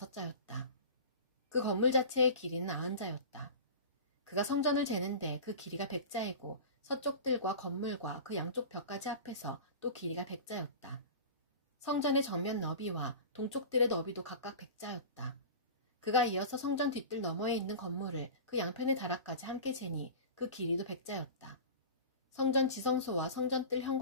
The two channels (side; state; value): both; inverted; correlation -0.34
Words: 그 건물 자체의 길이는 90자였다. 그가 성전을 재는데 그 길이가 100자이고 서쪽 뜰과 건물과 그 양쪽 벽까지 합해서 또 길이가 100자였다. 성전의 정면 너비와 동쪽 뜰의 너비도 각각 100자였다. 그가 이어서 성전 뒷뜰 너머에 있는 건물을 그 양편의 다락까지 함께 재니 그 길이도 100자였다. 성전 지성소와 성전 뜰